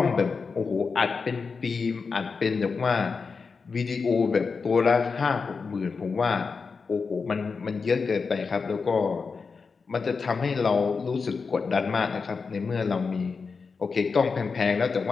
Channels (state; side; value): quieter; right; 4.9 dB